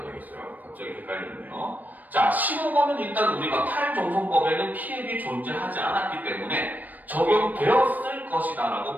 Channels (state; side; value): late; left; 0.083 ms